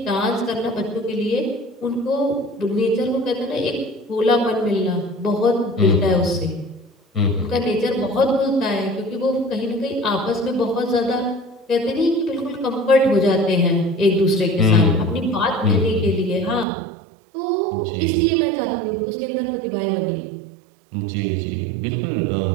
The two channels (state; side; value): drops out; left; at 16.7 s